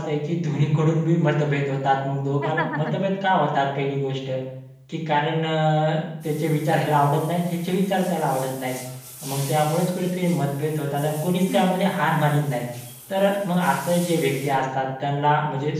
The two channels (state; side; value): identical; both; correlation 1.00